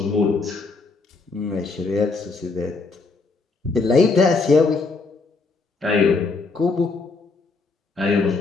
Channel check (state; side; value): quieter; right; 4.0 dB